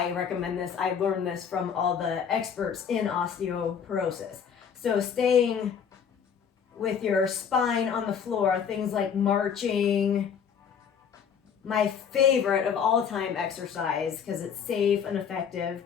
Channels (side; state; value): right; quieter; 7.3 dB